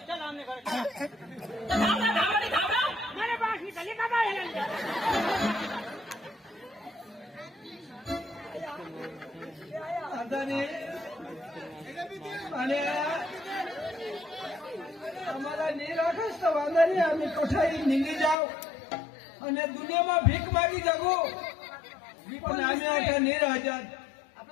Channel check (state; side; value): drops out; right; at 18.4 s